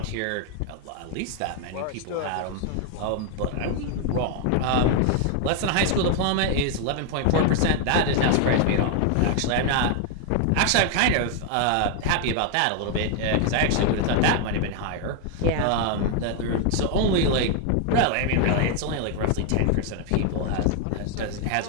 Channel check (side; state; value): both; different; correlation 0.01